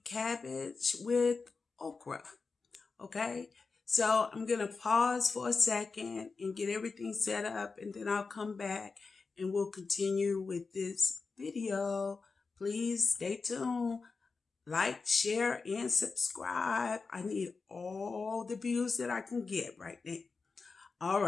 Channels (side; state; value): right; quieter; 4.4 dB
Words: cabbage with okra. Okay, so I'm gonna pause for a second and get everything set up, and then I'll come back and we'll continue with this video. Please stay tuned. Like, share, and subscribe. I need all the views that I can get right now. All